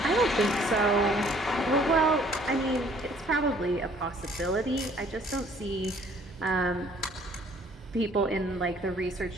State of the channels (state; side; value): normal; both; correlation 0.59